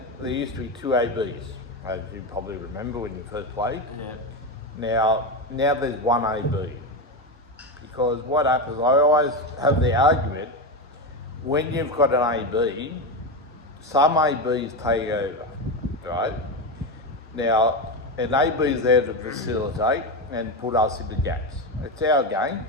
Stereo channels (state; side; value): normal; both; correlation 0.15